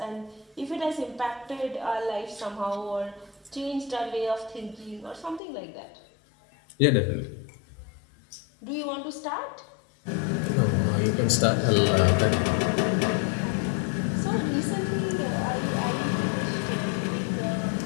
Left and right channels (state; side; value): drops out; right; at 5.4 s